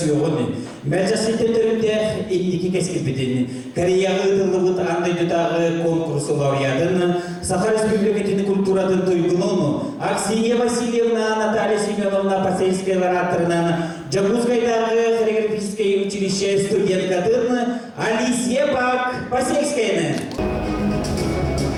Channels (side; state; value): both; identical; correlation 1.00